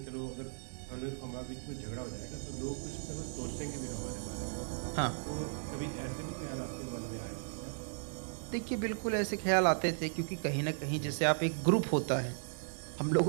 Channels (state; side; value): silent; left; digital silence